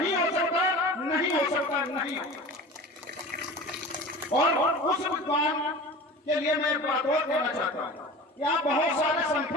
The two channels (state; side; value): normal; both; correlation 0.37